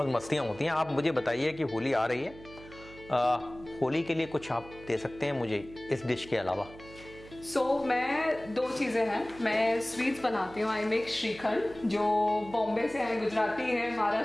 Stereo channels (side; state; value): right; noise; hum, 19 dB below the sound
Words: मस्तियाँ होती हैं। आप मुझे बताइए कि होली आ रही है, होली के लिए कुछ आप दे सकते हैं मुझे इस डिश के अलावा? मैं 2 चीज़ें हैं, मैं स्वीट्स बनाती हूँ। आई मेक श्रीखंड, जो बॉम्बे से हैं, गुजराती हैं,